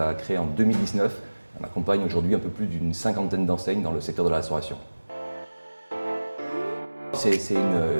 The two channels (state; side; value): inverted; both; correlation -1.00